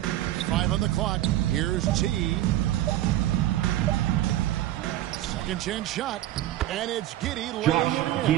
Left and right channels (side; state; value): left; quieter; 14.0 dB